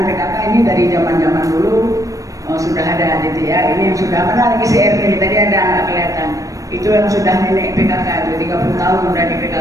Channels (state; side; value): late; left; 0.16 ms